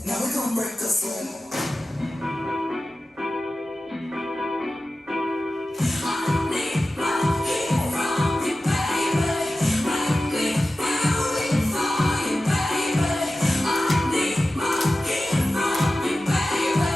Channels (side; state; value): both; normal; correlation 0.94